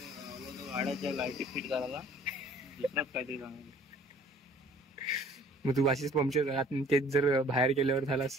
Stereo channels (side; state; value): both; normal; correlation 0.53